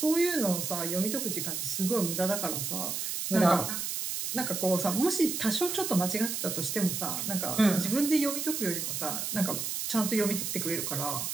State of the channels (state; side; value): noise; right; hiss, 3 dB below the sound